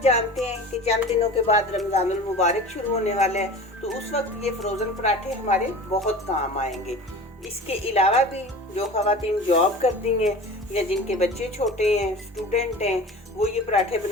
जानते हैं कि चंद दिनों के बाद रमज़ानुल मुबारक शुरू होने वाला है, तो उस वक्त ये फ्रोज़न पराठे हमारे बहुत काम आएंगे। इसके अलावा भी जो ख़वातीन जॉब करती हैं या जिनके बच्चे छोटे हैं, स्टूडेंट हैं, वो ये पराठे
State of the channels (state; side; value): normal; both; correlation 0.37